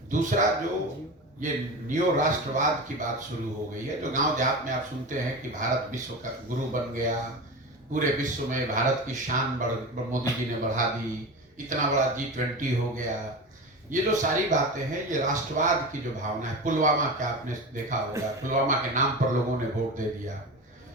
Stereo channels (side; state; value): both; normal; correlation 0.27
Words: दूसरा, जो ये नियो राष्ट्रवाद की बात शुरू हो गई है, जो गांव देहात में आप सुनते हैं कि भारत विश्व का गुरु बन गया, पूरे विश्व में भारत की शान मोदी जी ने बढ़ा दी, इतना बड़ा G20 हो गया, ये जो सारी बातें हैं ये राष्ट्रवाद की जो भावना है। पुलवामा का आपने देखा होगा, पुलवामा के नाम पर लोगों ने वोट दे दिया।